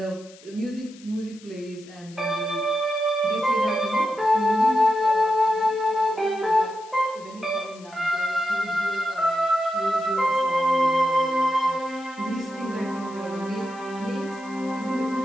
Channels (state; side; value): noise; left; hiss, 23 dB below the sound